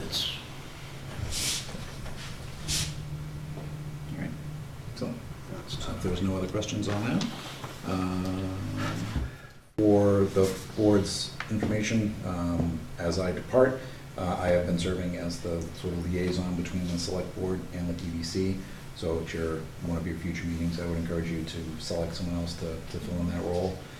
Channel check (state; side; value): identical; both; correlation 1.00